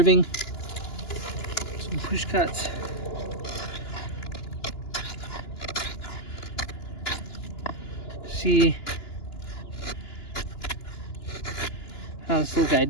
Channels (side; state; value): right; late; 2.9 ms